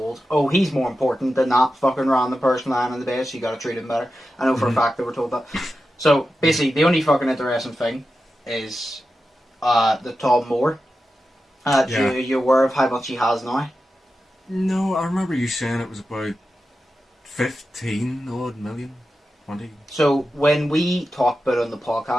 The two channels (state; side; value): normal; both; correlation 0.91